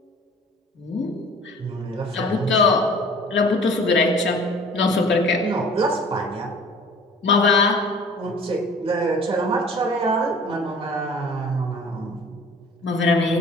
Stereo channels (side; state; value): both; normal; correlation 0.47